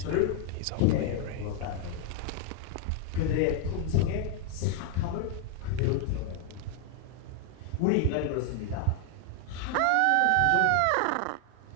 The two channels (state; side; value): different; both; correlation 0.00